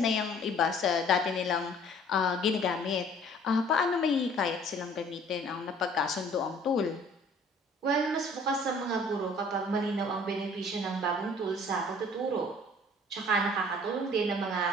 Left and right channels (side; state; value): both; normal; correlation 0.53